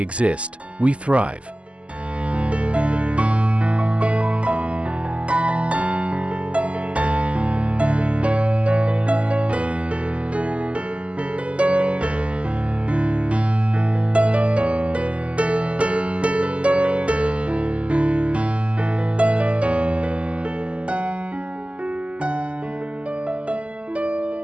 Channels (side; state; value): left; late; 0.058 ms